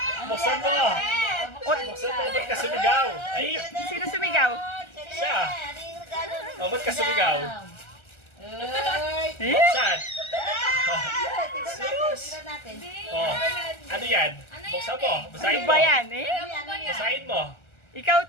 Buksan mo! Buksan mo, ba't ka sumigaw? Ay, Sino sumigaw? siya! O, ba't ka sumigaw? Eh? Buksan! Tignan natin. Oh, ano yan? Buksan mo, basahin Ano mo. ba yan eh? Basahin mo. Ikaw,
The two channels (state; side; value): late; right; 1.3 ms